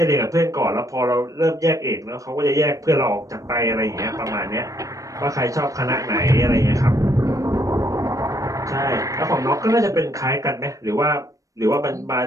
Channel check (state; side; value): late; left; 0.16 ms